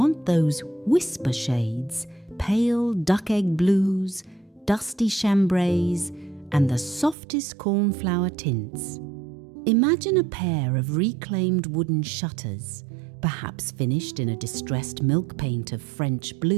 those whisper shades, pale duck egg blues, dusty chambrays, and the softest cornflower tints. Imagine a pair of reclaimed wooden shutters, perhaps finished in a distressed milk paint of French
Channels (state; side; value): drops out; left; at 7.2 s